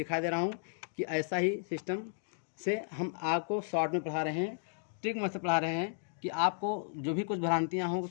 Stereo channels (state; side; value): silent; right; digital silence